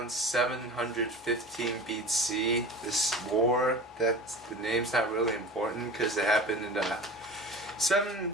715 BC. This war, the name's not really important because it happened in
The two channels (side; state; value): both; normal; correlation 0.36